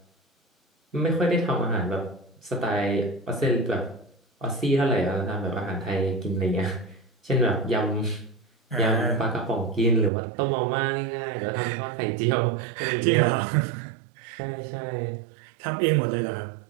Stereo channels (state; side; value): drops out; left; at 10.1 s